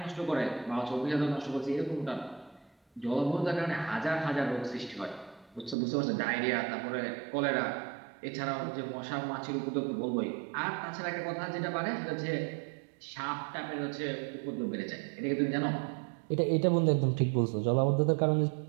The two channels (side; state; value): left; drops out; at 5.8 s